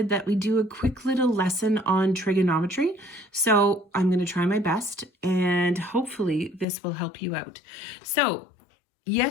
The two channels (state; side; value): drops out; right; at 6.7 s